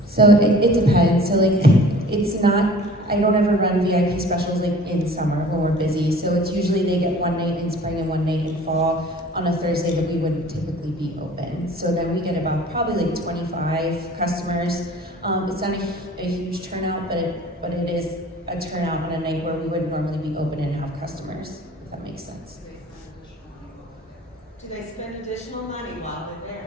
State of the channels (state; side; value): normal; both; correlation 0.47